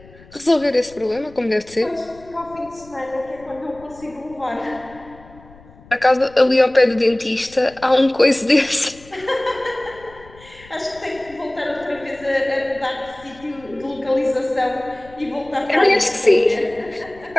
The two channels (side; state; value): left; noise; rumble, 23 dB below the sound